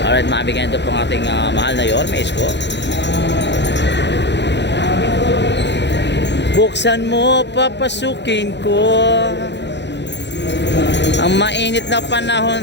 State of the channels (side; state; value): right; late; 0.51 ms